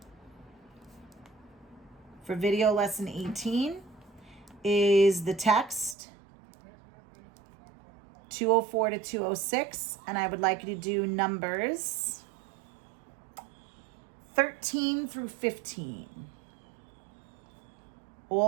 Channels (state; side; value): drops out; left; at 6.0 s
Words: For video lesson 18 is the text 204 to 206, and I would like you to do numbers 13 through 15.